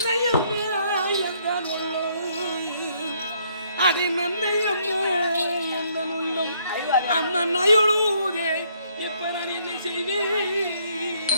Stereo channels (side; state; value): both; inverted; correlation -0.68